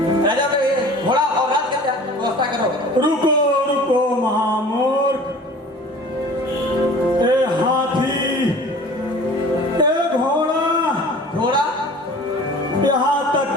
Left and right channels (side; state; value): both; normal; correlation 0.44